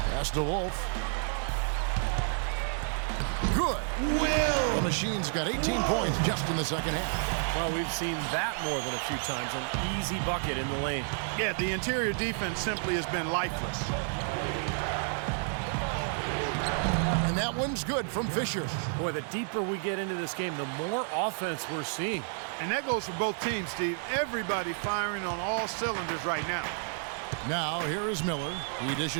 Pass to Wolf. Good. Will. The Machine's got 18 points just in the second half. Well, we've seen that more than a few times. An easy bucket in the lane. Yeah, the interior defense simply has been lifeless. And that one's good from Fisher. Boy, the deeper we get into this game, the more offense we're seeing. And that goes for both teams, Steve. Everybody firing on all cylinders right now. Now, here is Miller. He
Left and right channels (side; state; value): left; silent; 55 dB below the other